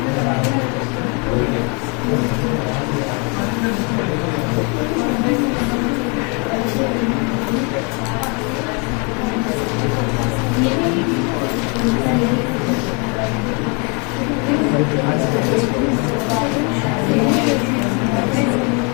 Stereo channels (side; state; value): right; quieter; 33.6 dB